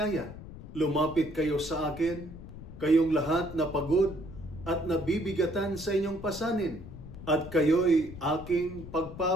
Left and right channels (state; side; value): noise; left; rumble, 14 dB below the sound